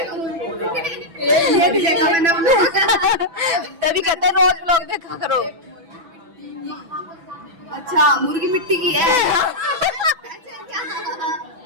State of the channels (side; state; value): left; late; 6.0 ms